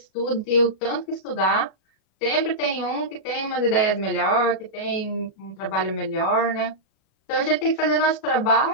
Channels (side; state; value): right; late; 37 ms